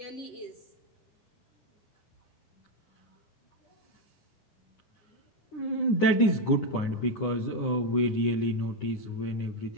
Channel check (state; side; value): late; right; 9.8 ms